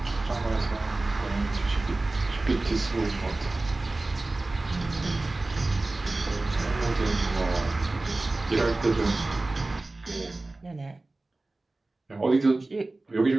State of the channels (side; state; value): left; quieter; 3.1 dB